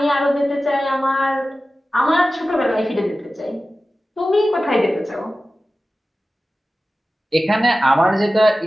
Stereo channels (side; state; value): both; normal; correlation 0.95